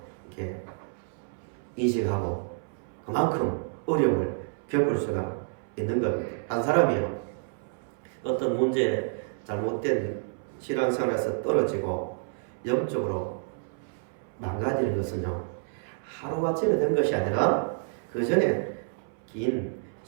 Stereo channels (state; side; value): silent; left; 58 dB below the other